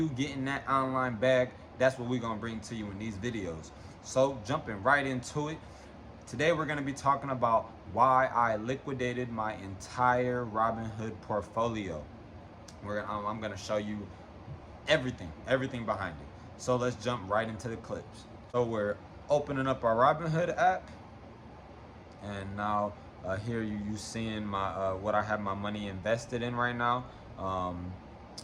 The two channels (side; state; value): both; identical; correlation 1.00